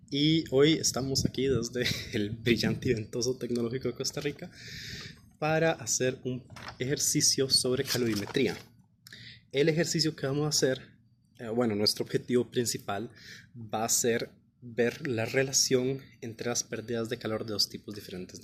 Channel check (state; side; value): identical; both; correlation 1.00